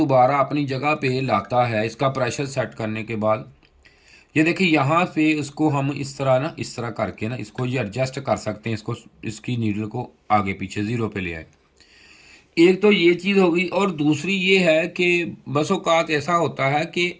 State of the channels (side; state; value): both; identical; correlation 1.00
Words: अपनी जगह पे लाता है इसका प्रेशर सेट करने के बाद। ये देखिए यहाँ पे इसको हम इस तरह करके ना इसको ये एडजस्ट कर सकते हैं, इसको इसकी नीडल को आगे पीछे ज़ीरो पे ले आए। एक तो ये चीज़ हो गई, और दूसरी ये है कि बस औक़ात ऐसा होता है कि